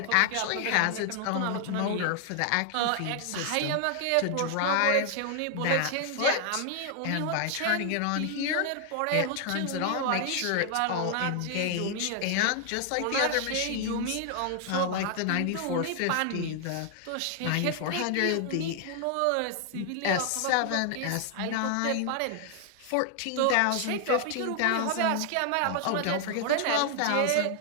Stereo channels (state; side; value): different; both; correlation 0.00